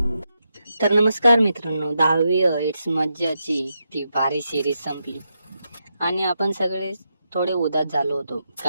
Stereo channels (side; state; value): both; inverted; correlation -0.84